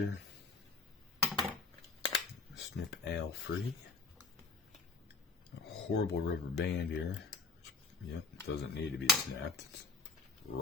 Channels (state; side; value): quieter; right; 3.8 dB